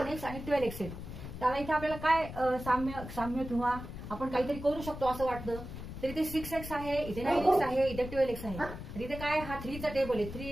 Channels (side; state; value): left; noise; rumble, 10 dB below the sound